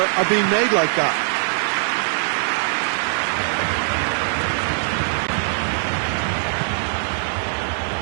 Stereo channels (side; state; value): left; silent; digital silence